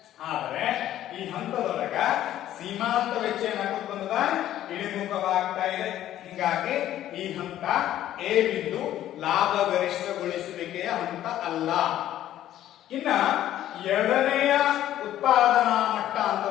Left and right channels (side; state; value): right; quieter; 12.5 dB